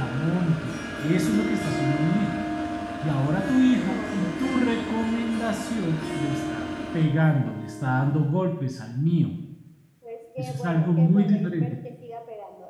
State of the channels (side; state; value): both; identical; correlation 1.00